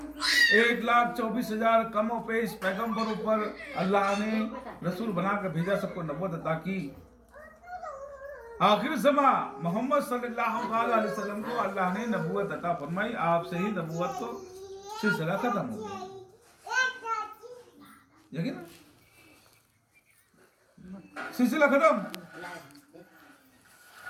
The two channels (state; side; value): identical; both; correlation 1.00